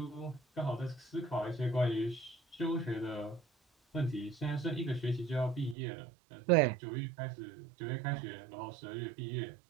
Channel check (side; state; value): left; drops out; at 5.8 s